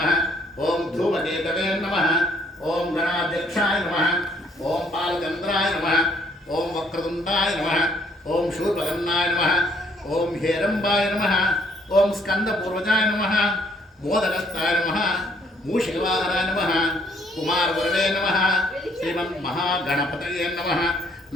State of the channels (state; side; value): normal; both; correlation 0.66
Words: ఓం ధూమకేతవే నమః, ఓం గణాధ్యక్షాయ నమః, ఓం బాలచంద్రాయ నమః, ఓం వక్రతుండాయ నమః, ఓం శూర్పకర్ణాయ నమః, ఓం హేరంబాయ నమః, ఓం స్కందపూర్వజాయ నమః, మోదకస్థాయ నమః, మూషికవాహనాయ నమః, కుమారవరదే నమః, శ్రీమన్మహాగణపతయే నమః.